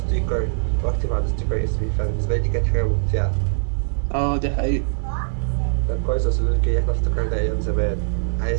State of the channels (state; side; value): silent; left; 64 dB below the other